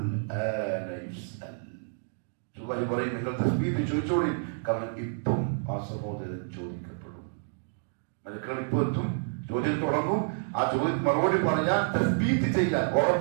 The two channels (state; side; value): silent; left; digital silence